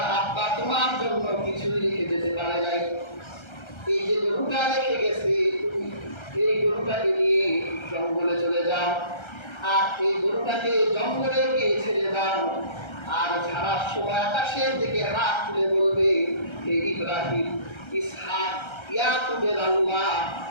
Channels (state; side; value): late; right; 1.3 ms